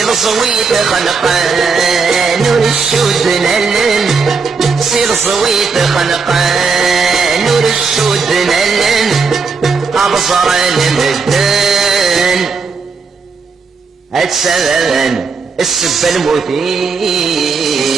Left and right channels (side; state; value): left; quieter; 4.9 dB